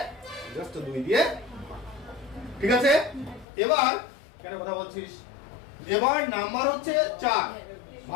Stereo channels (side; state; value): right; drops out; at 3.5 s